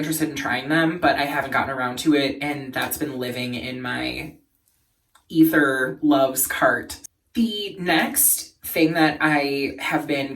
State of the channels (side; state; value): both; identical; correlation 1.00